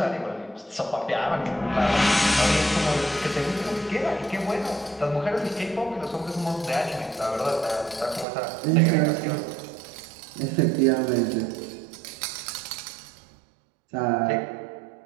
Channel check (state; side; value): drops out; left; at 8.2 s